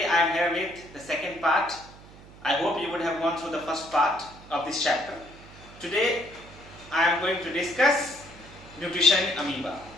I am here with the second part. I hope you would have gone through the first part of this chapter. Today I am going to discuss nutrition in amoeba.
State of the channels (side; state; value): right; noise; hum, 20 dB below the sound